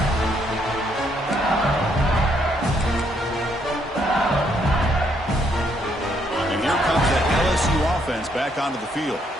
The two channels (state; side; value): normal; both; correlation 0.72